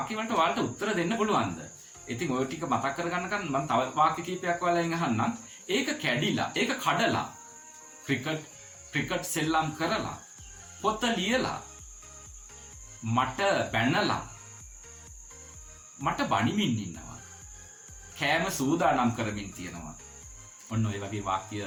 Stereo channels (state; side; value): identical; both; correlation 1.00